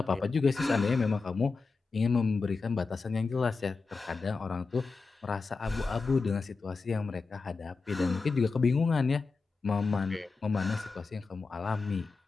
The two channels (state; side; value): quieter; right; 4.3 dB